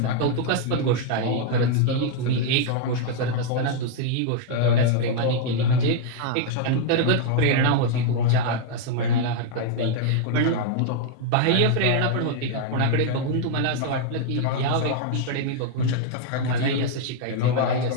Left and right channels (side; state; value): both; different; correlation 0.00